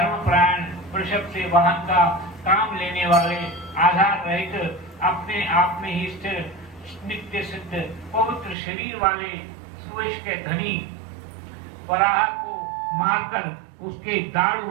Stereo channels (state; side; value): drops out; left; at 8.6 s